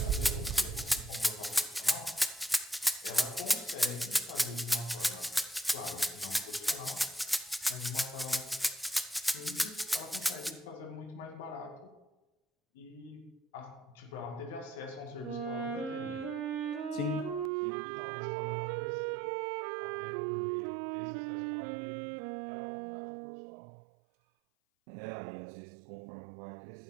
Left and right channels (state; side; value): drops out; left; at 17.5 s